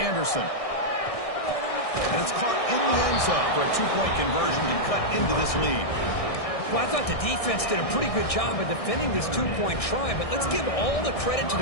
And it's caught in the end zone for a 2-point conversion to cut into this lead. Well, I thought the defense did a pretty good job of defending this 2-point try, but let's give all the credit to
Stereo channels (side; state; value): right; late; 1.6 ms